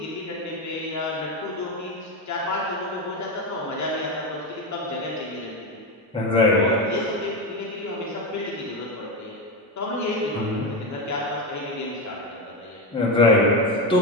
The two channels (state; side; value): normal; both; correlation 0.14